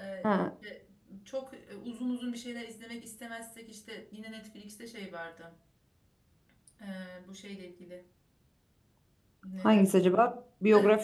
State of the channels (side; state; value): both; identical; correlation 1.00